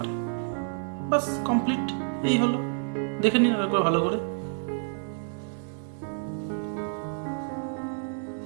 বাস, কমপ্লিট। এই হলো, দেখে নিন একবার ভালো করে।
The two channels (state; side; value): silent; left; digital silence